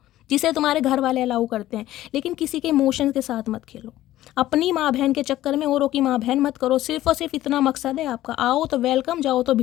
जिसे तुम्हारे घर वाले अलाउ करते हैं, लेकिन किसी के इमोशंस के साथ मत खेलो। अपनी माँ बहन के चक्कर में औरों की माँ बहन मत करो। सिर्फ और सिर्फ इतना मकसद है आपका, आओ तो वेलकम, जाओ तो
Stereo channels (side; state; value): right; quieter; 14.5 dB